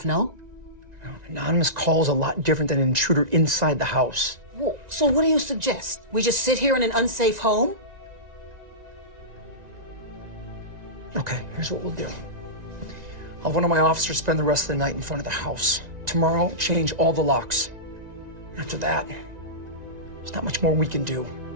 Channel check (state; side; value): late; left; 1.9 ms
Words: no? Anonymous call is a lot different than an intruder inside the house. Well, so what do you suggest? We just sit here in an unsafe home? Okay, here's what we'll do. I'll have one of my officers spend the rest of the night in front of the house. Tomorrow, change all the locks. After that, there's not much more we can do.